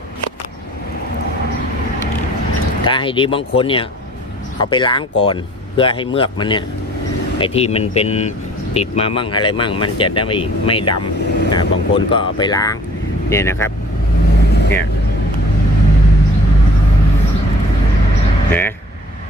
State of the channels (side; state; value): both; normal; correlation 0.52